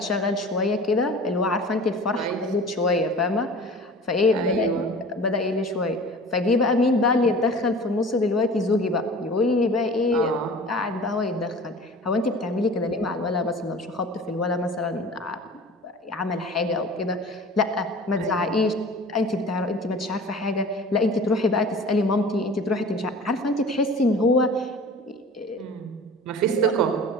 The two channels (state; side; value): normal; both; correlation 0.41